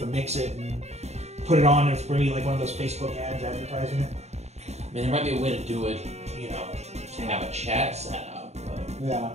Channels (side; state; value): left; late; 0.32 ms